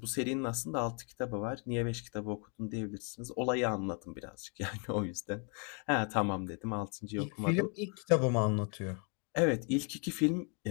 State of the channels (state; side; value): quieter; right; 37.9 dB